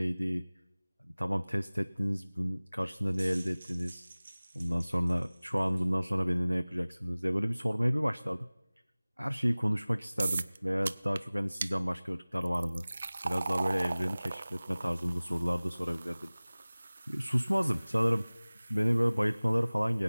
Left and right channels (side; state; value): both; inverted; correlation -0.99